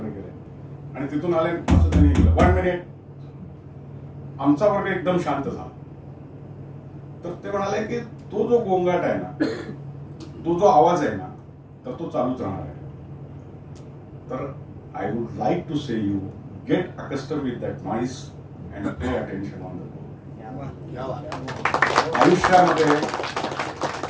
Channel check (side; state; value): both; identical; correlation 1.00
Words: गेले आणि तिथून आले. असं त्यांनी 1 मिनिट. आमचा वर्ग एकदम शांत झाला. तर ते म्हणाले की तो जो गोंगाट आहे ना, तो जो आवाज आहे ना, तर तो चालूच राहणार आहे. तर I would like to say you get accustomed with that noise and pay attention on the board. आयुष्यामध्ये